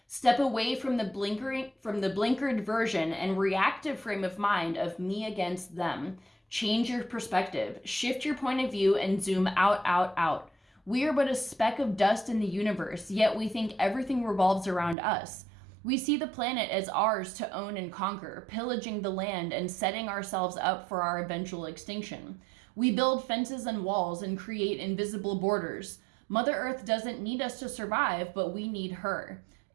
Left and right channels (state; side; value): drops out; left; at 15.0 s